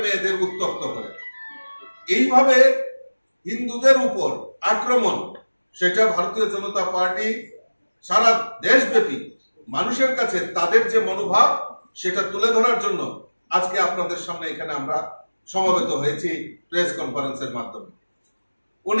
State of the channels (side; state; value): both; inverted; correlation -1.00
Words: মেয়েদের উত্ত্যক্ত করে এইভাবে হিন্দুদের উপর আক্রমণ সেটা ভারতীয় জনতা পার্টি সারা দেশব্যাপী মানুষের কাছে তাদের যে মনোভাব সেটা তুলে ধরার জন্য আজকে আপনাদের সামনে এখানে আমরা সমবেত হয়েছি প্রেস কনফারেন্সের মাধ্যমে